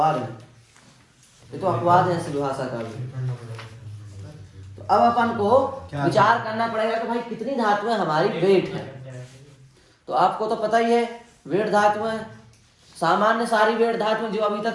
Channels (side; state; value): both; identical; correlation 1.00